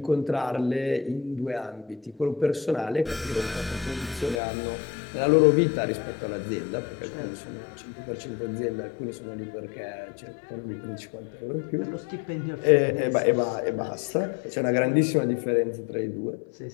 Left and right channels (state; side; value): drops out; right; at 4.4 s